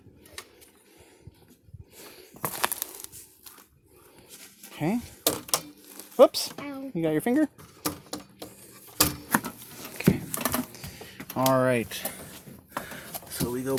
Okay. Whoops. Ow. You got your finger? Okay. All right. So we go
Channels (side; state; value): both; identical; correlation 1.00